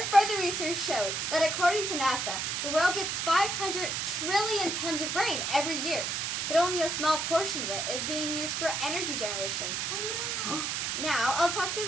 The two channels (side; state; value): right; noise; hiss, 1 dB below the sound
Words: further research showed that according to NASA, the world gets 500 trillion tons of rain every year, but only a small portion of it is being used for energy generation. Oh no! Now, I'll talk to